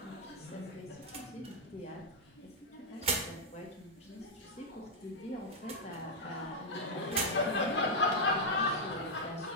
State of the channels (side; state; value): both; normal; correlation -0.03